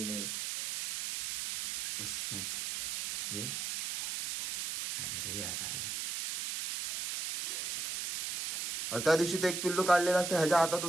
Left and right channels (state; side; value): noise; right; hiss, 4 dB below the sound